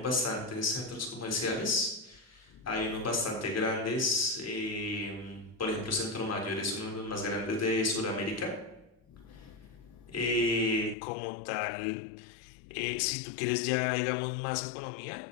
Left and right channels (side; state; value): right; drops out; at 11.0 s